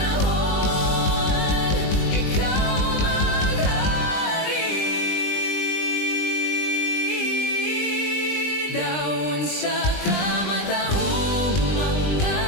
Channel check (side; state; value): right; late; 20 ms